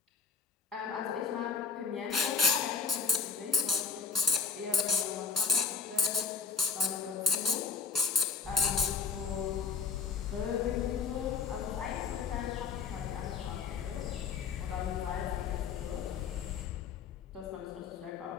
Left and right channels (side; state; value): right; quieter; 5.6 dB